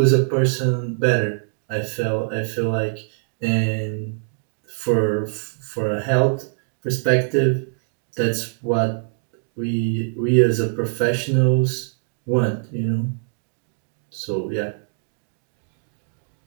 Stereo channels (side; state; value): left; silent; digital silence